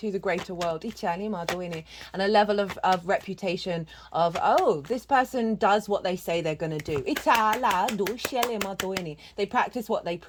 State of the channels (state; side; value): identical; both; correlation 1.00